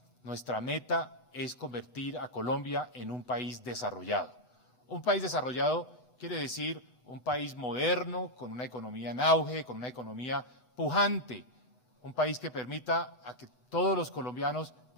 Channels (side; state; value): right; late; 7.9 ms